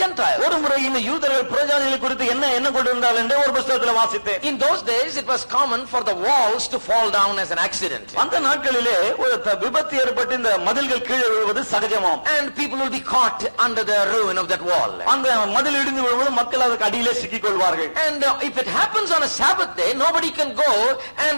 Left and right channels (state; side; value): inverted; both; correlation -1.00